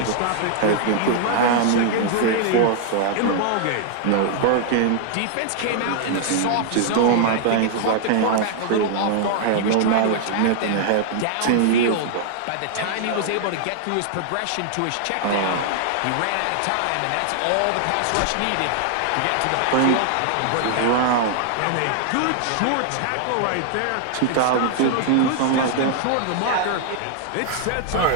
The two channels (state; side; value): different; both; correlation 0.00